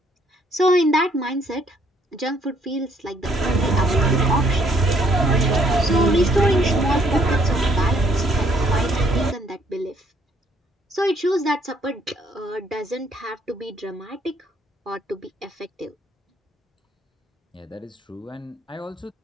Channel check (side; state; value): both; normal; correlation 0.67